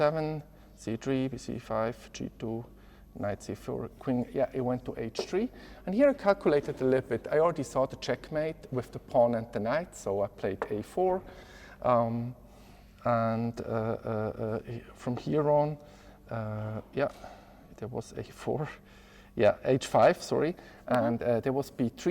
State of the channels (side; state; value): both; identical; correlation 1.00